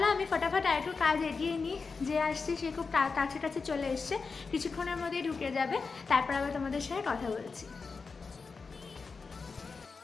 আমি ফটাফট আর একটু কাজ এগিয়ে নিই। যে আসছে সে খুব কাছে কাছে চলে এসছে, কিছুক্ষণের মধ্যেই ঢুকে যাবে। তারপর আবার তোমাদের সাথে কথা বলছি।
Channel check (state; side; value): quieter; right; 4.7 dB